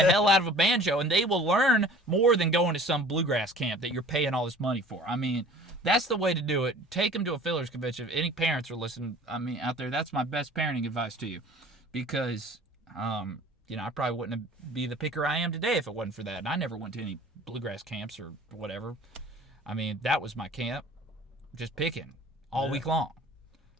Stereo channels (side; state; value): both; normal; correlation 0.47